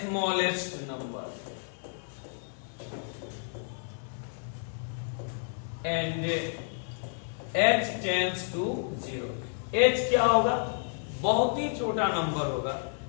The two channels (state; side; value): silent; right; digital silence